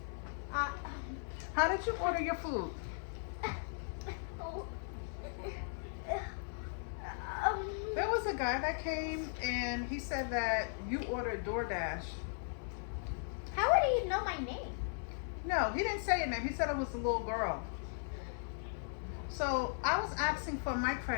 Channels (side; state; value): right; silent; 53 dB below the other